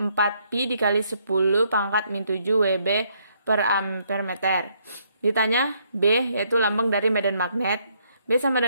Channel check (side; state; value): both; inverted; correlation -0.71